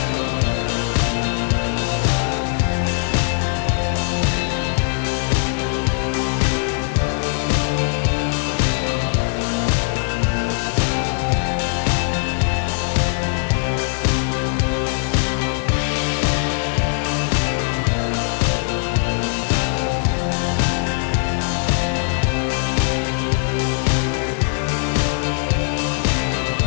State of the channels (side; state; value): right; silent; digital silence